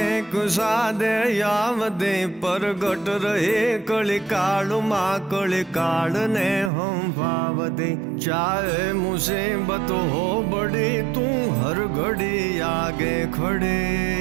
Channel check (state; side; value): drops out; left; at 6.7 s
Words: एक सादे यावदे परगट रहे कली काल माँ कली काल ने हम भावदे चाहे मुसीबत हो बड़ी तू हर घड़ी आगे खड़े